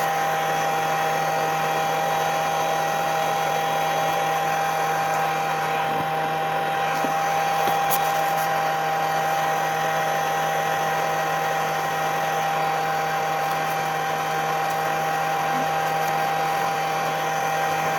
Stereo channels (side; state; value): both; identical; correlation 1.00